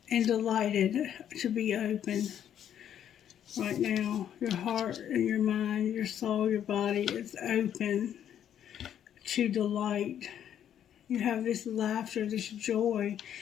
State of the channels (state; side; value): quieter; right; 9.9 dB